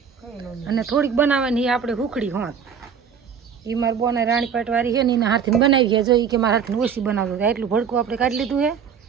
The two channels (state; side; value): quieter; left; 7.2 dB